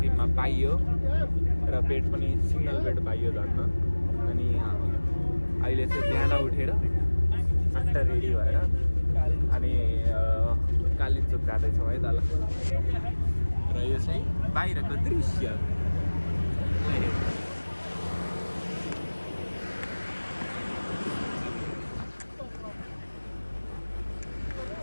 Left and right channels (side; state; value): both; inverted; correlation -1.00